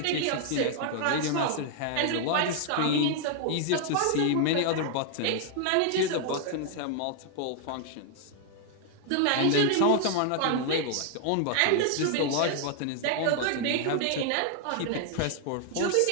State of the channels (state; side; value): different; both; correlation 0.00